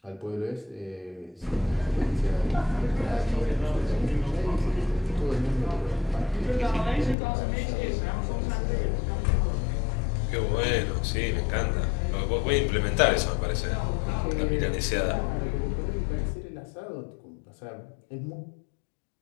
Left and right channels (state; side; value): drops out; right; at 7.2 s